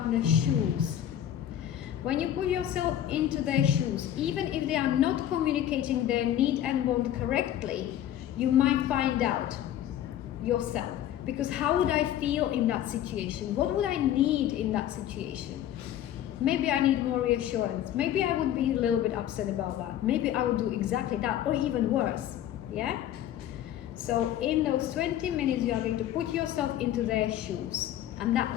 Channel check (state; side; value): quieter; right; 11.4 dB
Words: shoes. When you put yourself into their shoes, even if they are not communicating their need and want correctly, you might find out yourself. Because how would I feel in that situation? What would I need in that situation? Maybe I need more reassurance. Maybe I would be a little bit upset about that. Maybe I would do exactly that, or even worse. Yeah? So in those 20 minutes, you are going to put yourself into their shoes, and